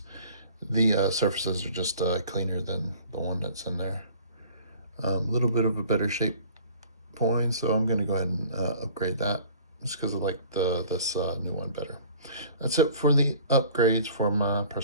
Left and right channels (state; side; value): inverted; both; correlation -0.49